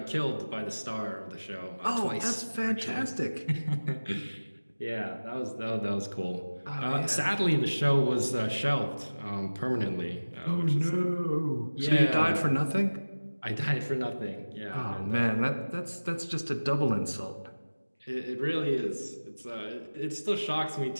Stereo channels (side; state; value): both; inverted; correlation -1.00